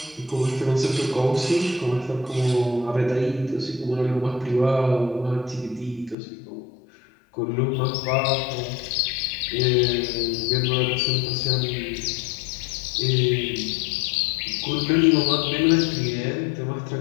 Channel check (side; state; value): right; drops out; at 6.2 s